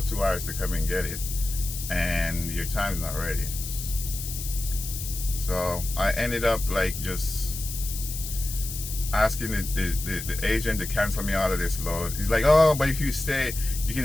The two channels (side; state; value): left; noise; hiss, 8 dB below the sound